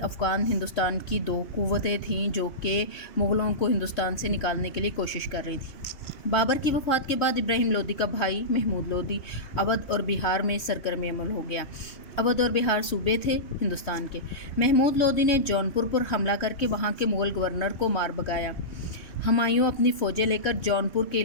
افغان ہندوستان کی دو قوتیں تھیں جو کہ مغلوں کو ہندوستان سے نکالنے کے لیے کوشش کر رہی تھیں۔ بابر کی وفات کے بعد ابراہیم لودھی کا بھائی محمود لودھی اودھ اور بہار میں سرگرم عمل ہو گیا۔ اودھ اور بہار صوبے تھے ہندوستان کے۔ محمود لودھی نے جونپور پر حملہ کر کے وہاں کے مغل گورنر کو مار بھگایا۔ ہمایوں اپنی فوجیں لے کر جونپور کے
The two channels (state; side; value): late; right; 3.1 ms